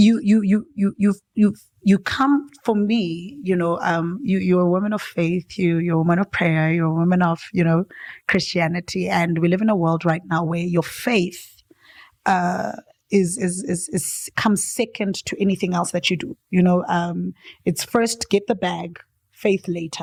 You come, for me, you know, you're a woman of faith, you're a woman of prayer, you're a woman of, you know, Christianity. And we live in a world right now where your faith, is comes second to anything else that you do. You know, it's first get the bag, faith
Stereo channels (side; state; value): both; identical; correlation 1.00